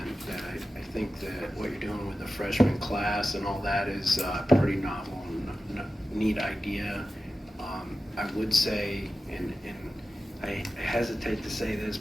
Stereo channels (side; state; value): both; normal; correlation 0.94